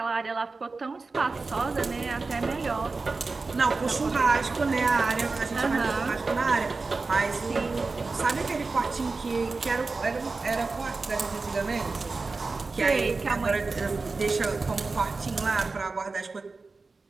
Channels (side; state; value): left; quieter; 3.9 dB